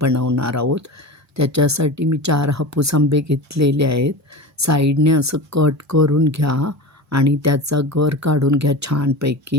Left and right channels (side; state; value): both; normal; correlation 0.29